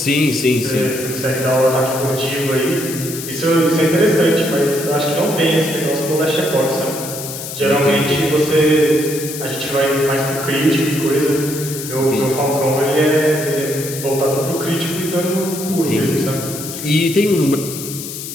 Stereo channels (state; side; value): noise; left; hiss, 9 dB below the sound